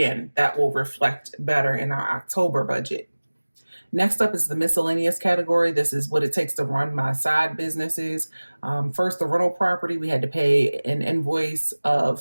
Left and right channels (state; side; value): inverted; both; correlation -1.00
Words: that will reflect better in our October budget. Next up is the miscellaneous category. This is what it takes to run my side businesses. First, the rental property, we had to pay an invoice of